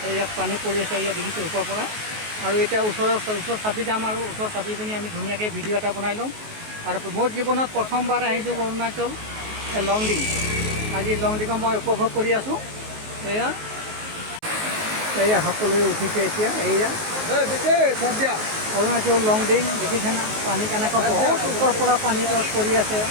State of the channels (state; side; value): late; left; 19 ms